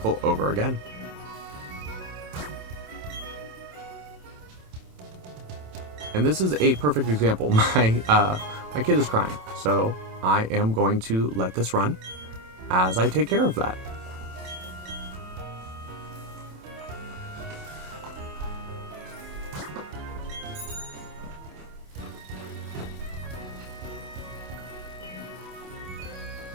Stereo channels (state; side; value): late; left; 27 ms